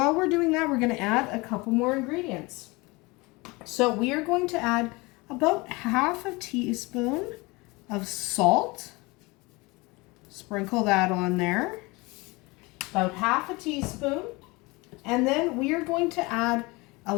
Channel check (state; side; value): quieter; right; 24.5 dB